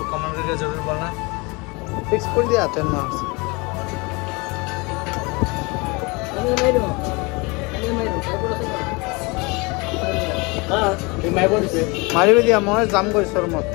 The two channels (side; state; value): right; quieter; 27.2 dB